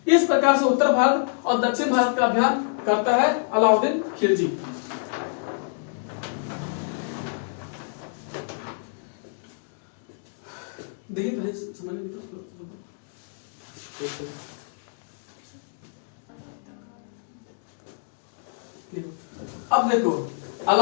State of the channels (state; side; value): silent; right; digital silence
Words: इस प्रकार से उत्तर भारत और दक्षिण भारत का अभियान करता है अलाउद्दीन खिलजी। देखिए समझ अब देखो